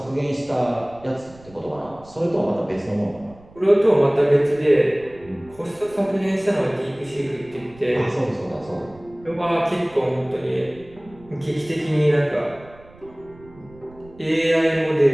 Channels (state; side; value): noise; right; rumble, 23 dB below the sound